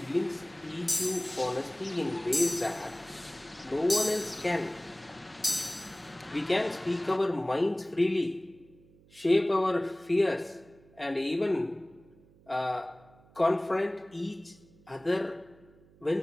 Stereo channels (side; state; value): right; noise; hum, 27 dB below the sound